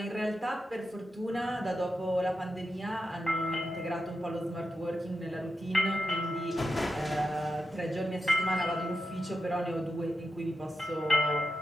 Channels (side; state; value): both; normal; correlation 0.88